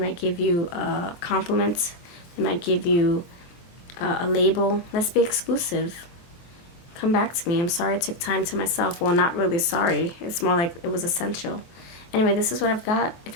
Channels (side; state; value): right; late; 23 ms